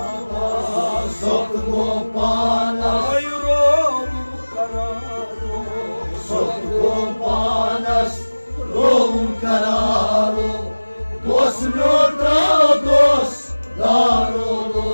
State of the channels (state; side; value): inverted; both; correlation -1.00